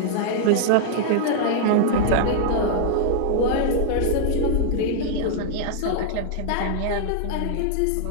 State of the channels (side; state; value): both; different; correlation -0.01